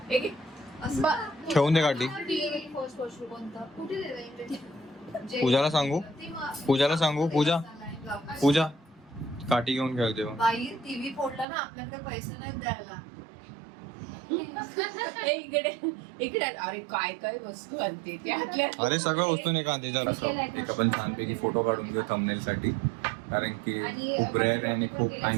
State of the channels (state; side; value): drops out; left; at 11.5 s